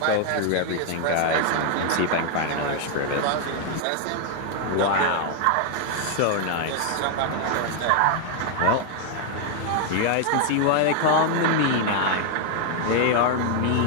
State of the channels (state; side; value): different; both; correlation 0.00